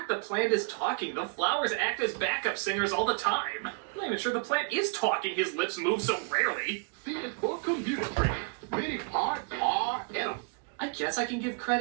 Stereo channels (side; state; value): left; quieter; 36.7 dB